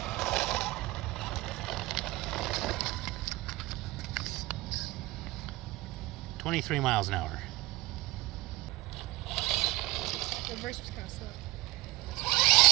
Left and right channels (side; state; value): left; quieter; 20.1 dB